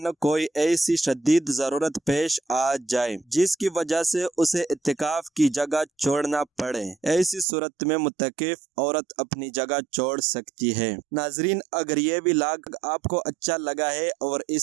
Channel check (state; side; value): drops out; left; at 7.5 s